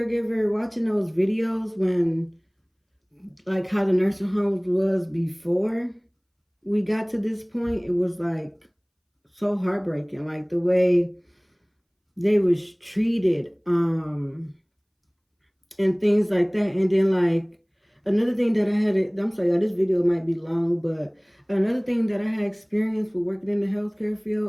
watching those videos when, like, how the nursing homes was before we got to this point, it was like so heartbreaking, like the way they was treated, and things like that. And then, like, another thing that I'm sorry, this video might be long, but another thing that I had experienced with working in the healthcare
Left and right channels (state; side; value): identical; both; correlation 1.00